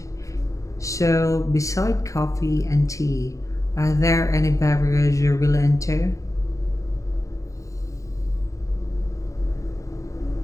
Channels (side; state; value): right; late; 0.16 ms